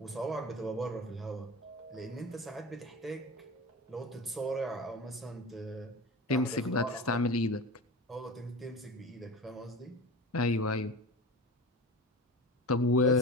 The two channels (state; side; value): normal; both; correlation 0.31